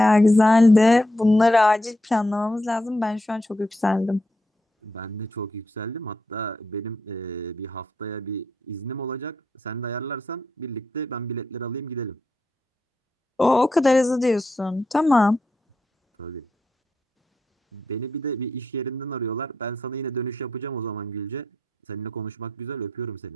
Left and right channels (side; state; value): both; normal; correlation 0.83